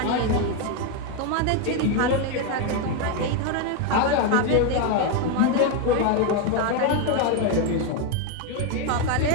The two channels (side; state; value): both; different; correlation 0.01